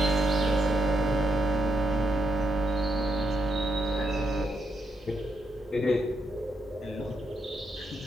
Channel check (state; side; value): normal; both; correlation 0.80